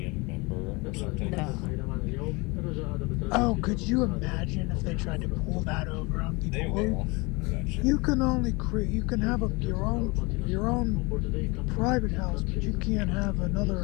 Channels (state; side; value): quieter; right; 26.5 dB